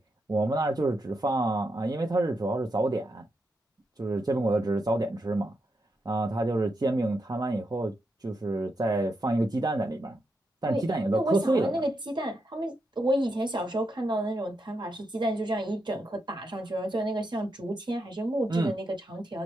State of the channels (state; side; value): normal; both; correlation 0.84